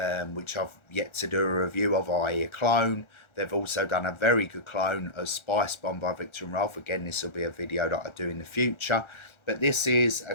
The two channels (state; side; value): late; right; 1.4 ms